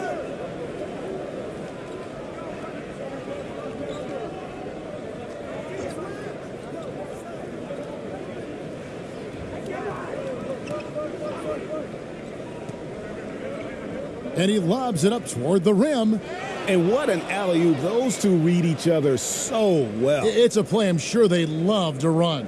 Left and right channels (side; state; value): both; identical; correlation 1.00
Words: And he lobs it up toward the rim. And what an alley-oop. Those two read each other so well. It's a play I'm sure they love to run.